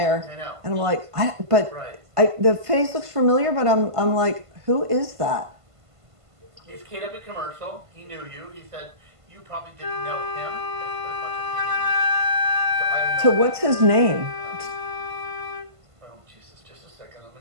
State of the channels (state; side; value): late; left; 1.5 ms